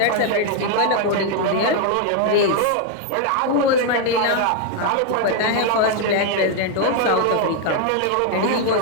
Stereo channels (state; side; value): different; both; correlation 0.01